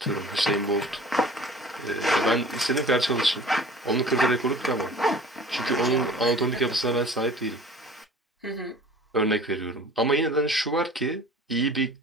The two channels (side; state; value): both; normal; correlation 0.45